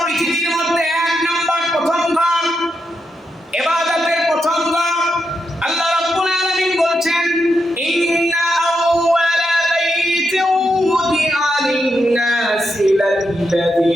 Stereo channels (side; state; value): both; normal; correlation 0.84